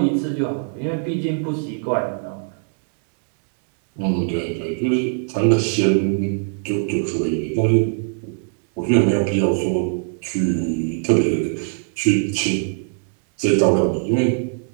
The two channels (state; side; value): silent; left; digital silence